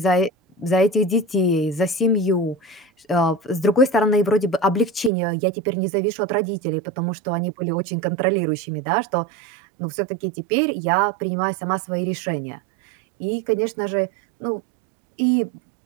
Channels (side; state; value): left; drops out; at 5.1 s